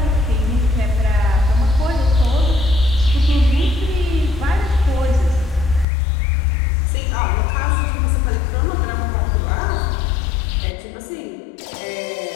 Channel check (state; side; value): drops out; right; at 5.9 s